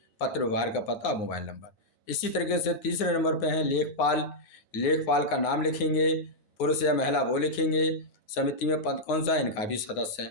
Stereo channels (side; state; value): right; late; 9.5 ms